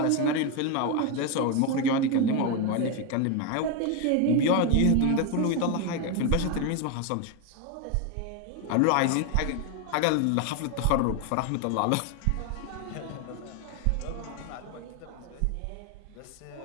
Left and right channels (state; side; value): different; both; correlation 0.02